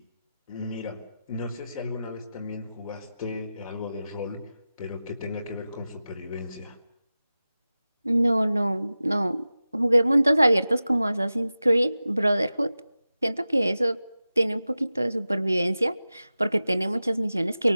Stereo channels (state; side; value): inverted; both; correlation -0.95